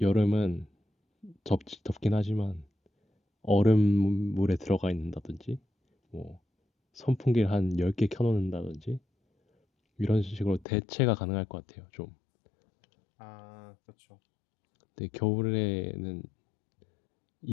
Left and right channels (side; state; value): right; drops out; at 10.7 s